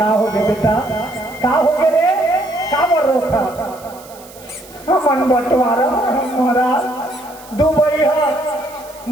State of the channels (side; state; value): right; noise; hiss, 21 dB below the sound